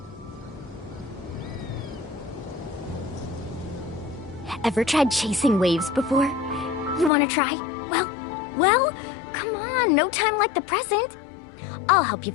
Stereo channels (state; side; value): drops out; right; at 7.1 s